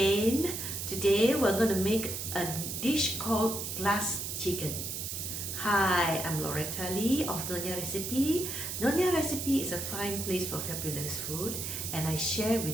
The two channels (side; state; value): right; noise; hiss, 5 dB below the sound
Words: Today we're going to make a dish called glass chicken. Hi, I'm Loretta Lee of Nyonya Recipe. Nyonya Recipe is a fine place for fabulous food, and I share